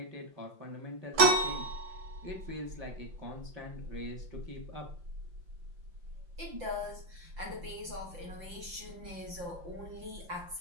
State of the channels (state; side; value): late; left; 5.7 ms